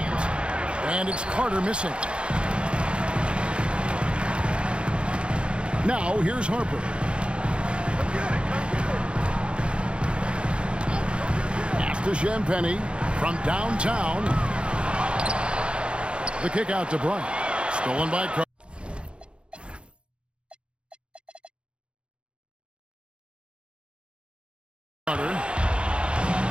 And it's Carter missing. Now here's Harper. Pass to Champagnie from downtown. The kick out to Bryant. Stolen by Carter.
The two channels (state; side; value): late; left; 0.056 ms